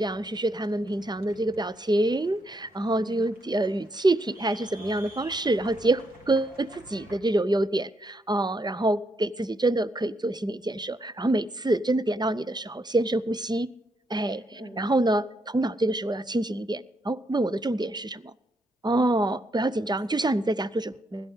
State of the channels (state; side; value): normal; both; correlation 0.77